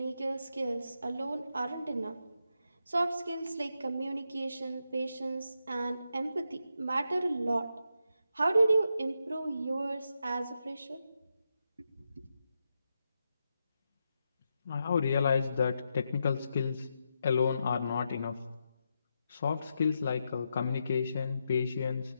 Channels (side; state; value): both; inverted; correlation -0.85